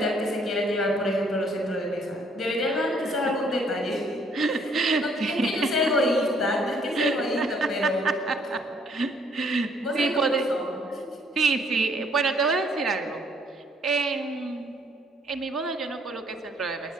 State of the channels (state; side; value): normal; both; correlation 0.64